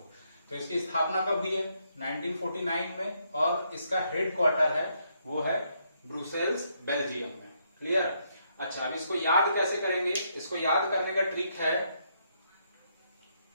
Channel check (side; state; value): both; inverted; correlation -0.75